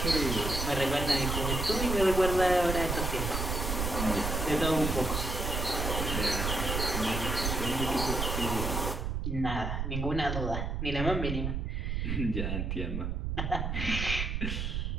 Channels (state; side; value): noise; right; rumble, 1 dB below the sound